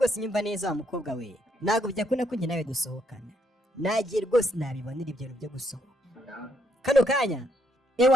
nyumva neza wa mukobwa we, ntabwo byakunda ko njye nawe dusohokana, nagiye rwose nabibonera ibyo bintu byo gusohoka kano kanya.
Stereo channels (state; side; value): normal; both; correlation 0.74